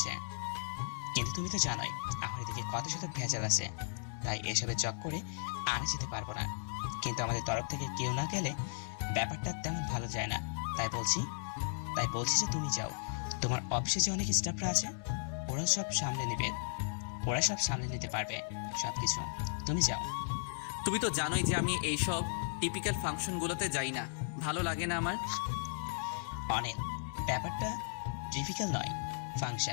কিন্তু তুমি তো জানোই আমার এদিকে কত শত ভেজাল আছে, তাই এসবে জব করে আর যেতে পারবো না। কিন্তু আমাদের তরফ থেকে কেউ না গেলে ব্যাপারটা তেমন ভালো যায় না, তাই বলছি যে তুমি যাও। তোমার অফিসে যে অনেক স্টাফরা আছে ওরা সব সামলে নিতে পারবে সবকিছু। তুমি যাও। তুমি তো জানোই যে আমি এইসব টিপিক্যাল ফাংশনগুলোতে যাই না, ভালো লাগে না আমার। অনেক ব্যাপারটা টিপিক্যাল নয়,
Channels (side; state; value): right; silent; digital silence